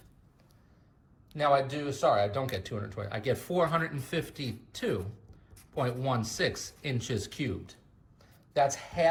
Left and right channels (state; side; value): identical; both; correlation 1.00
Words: Now I don't get 220, I get 452.16 inches cubed. That's